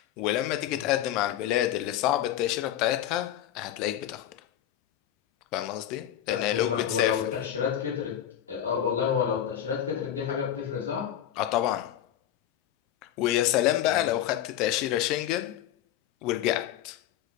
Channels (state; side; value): quieter; right; 11.2 dB